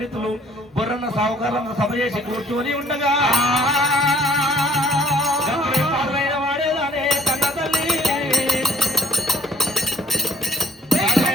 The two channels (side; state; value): both; normal; correlation 0.55